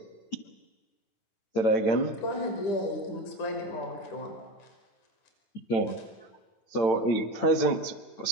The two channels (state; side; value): late; right; 8.9 ms